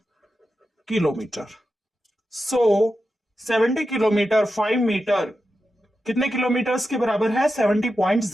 kilometre. So 70 kilometre 5 metre कितने kilometres के बराबर है?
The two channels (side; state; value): both; normal; correlation 0.90